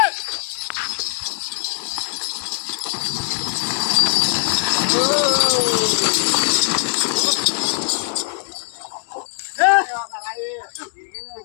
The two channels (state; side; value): silent; right; 65 dB below the other